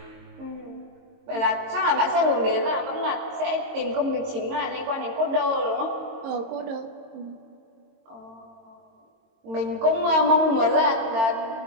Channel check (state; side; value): late; left; 22 ms